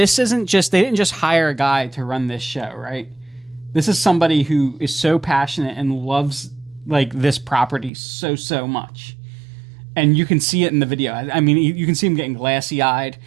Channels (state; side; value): drops out; left; at 7.9 s